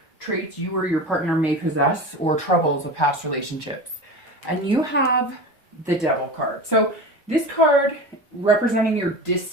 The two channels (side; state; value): both; normal; correlation 0.30